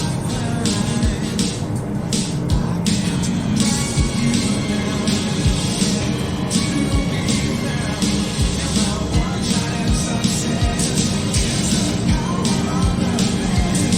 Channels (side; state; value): both; identical; correlation 1.00